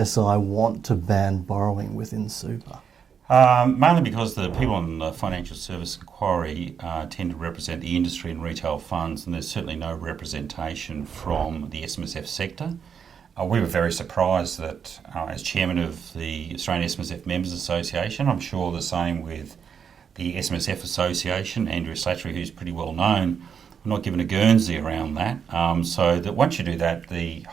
want to ban borrowing within super? Mainly because the people on the financial service inquiry tend to represent the industry and retail funds, and there's certainly no representation from the SMSF sector. We were very surprised that, as chairman of the Australian SMSF Members Association, I'm sure the same with the SMSF Association, Andrew Slattery, who's pretty well known, we're not given a Guernsey around that. So that once you do that, the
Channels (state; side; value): quieter; left; 7.1 dB